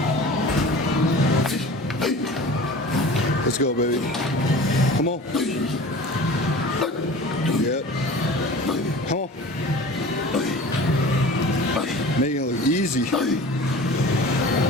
let's go, baby. Come on. Yep. Come on. Making it look easy.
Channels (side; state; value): both; normal; correlation 0.39